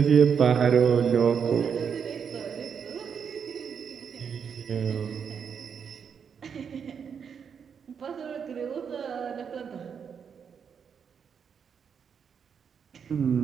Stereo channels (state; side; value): quieter; left; 6.9 dB